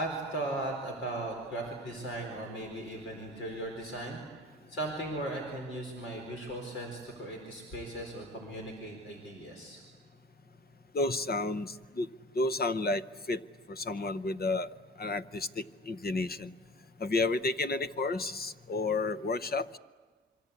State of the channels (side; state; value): both; normal; correlation 0.39